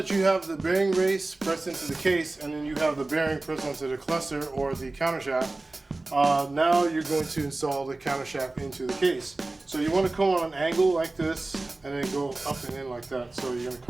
you have the bearing race pressed into the case, and then you have the bearing pressed onto the cluster or the countershaft, now you're going to install the countershaft into the case. So you want to come on an angle like this, and then go up and in like that. So you're going to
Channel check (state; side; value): quieter; left; 3.1 dB